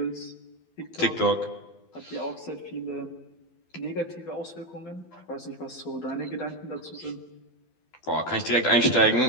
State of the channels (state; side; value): late; right; 12 ms